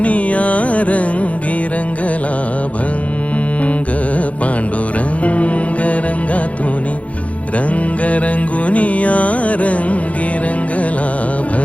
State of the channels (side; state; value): right; late; 0.066 ms